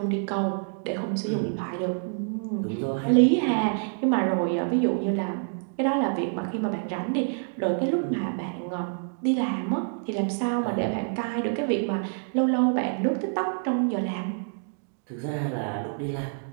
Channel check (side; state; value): left; silent; digital silence